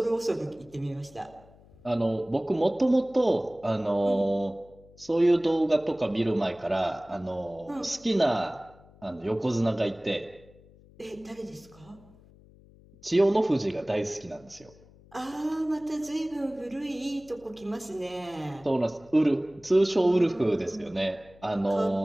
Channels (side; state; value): left; noise; hum, 25 dB below the sound